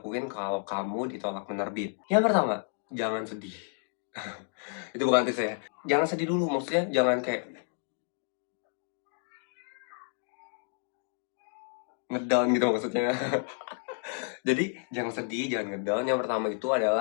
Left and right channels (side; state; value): right; silent; 56 dB below the other